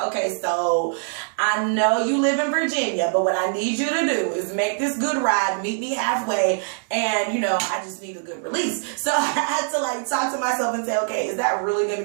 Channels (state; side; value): silent; left; 62 dB below the other